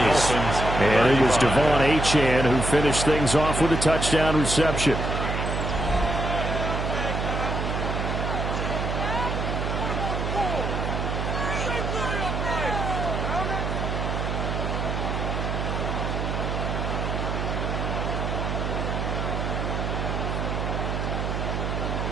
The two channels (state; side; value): noise; right; hum, 2 dB below the sound